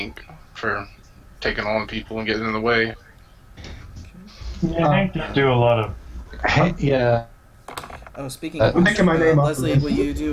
for taking on people and getting in the way. Yeah, Hank did do a lot of. Yeah. Oh, speaking of I'm making my name off Leslie, the list. will you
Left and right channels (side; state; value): both; identical; correlation 1.00